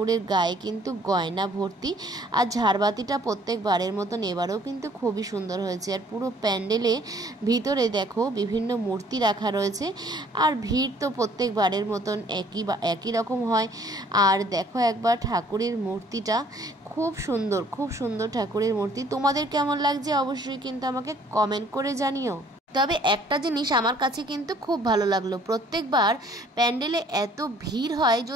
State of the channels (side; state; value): both; normal; correlation 0.59